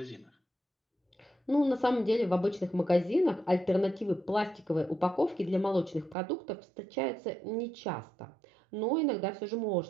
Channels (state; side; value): drops out; left; at 6.2 s